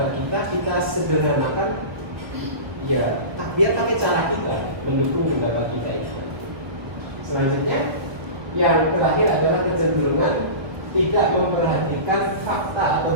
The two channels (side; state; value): left; late; 1.2 ms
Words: kita sederhanakan. Ya, biar pakai cara kita mendukung pendapat kita itu. Selanjutnya, yang terakhir adalah kecenderungan tidak memperhatikan fakta